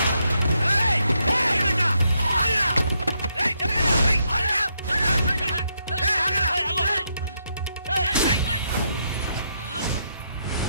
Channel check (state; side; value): inverted; both; correlation -0.78